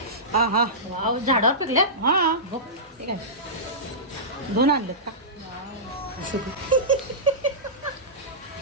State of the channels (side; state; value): both; normal; correlation -0.18